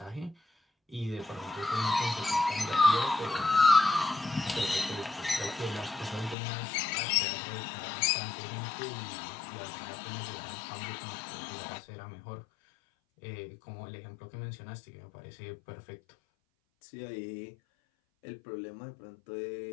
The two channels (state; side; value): drops out; right; at 6.4 s